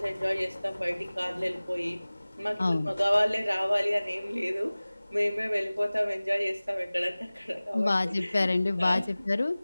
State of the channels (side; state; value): both; inverted; correlation -0.99